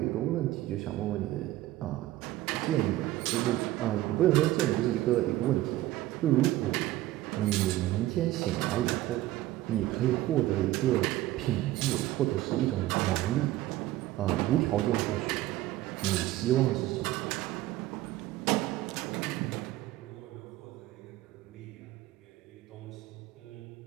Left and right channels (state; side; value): quieter; left; 15.8 dB